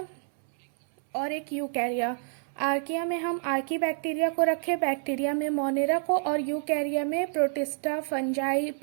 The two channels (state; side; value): silent; left; 59 dB below the other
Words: और एक यूकैरिया। आर्किया में हम आर्की बैक्टीरिया को रखे, बैक्टीरिया में मोनेरा को, और यूकैरिया में प्रोटिस्टा, फंजाई,